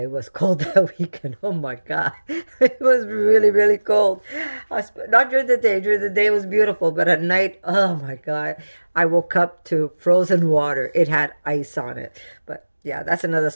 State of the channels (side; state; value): both; inverted; correlation -1.00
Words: was cold that weekend. Oh my God, it was really, really cold. Not during the day. During the day it was beautiful, but at night, oh my God, I woke up to frozen water. It had ice on it. But yeah, that's another